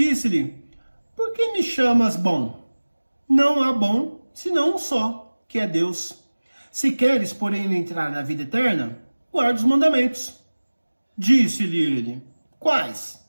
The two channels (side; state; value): both; inverted; correlation -1.00